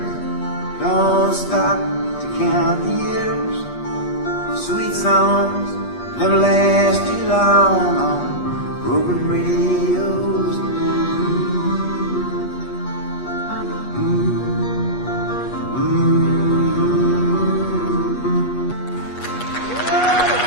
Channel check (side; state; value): right; late; 8.3 ms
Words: don't stop to count the years. Sweet songs never last too long on broken radios.